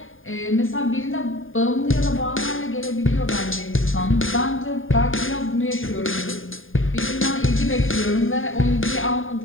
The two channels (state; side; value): late; right; 0.59 ms